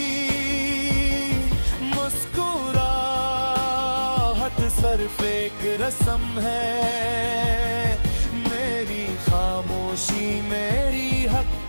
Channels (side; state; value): both; inverted; correlation -1.00